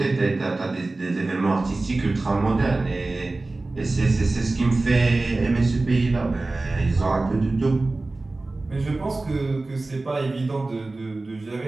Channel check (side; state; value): left; quieter; 3.2 dB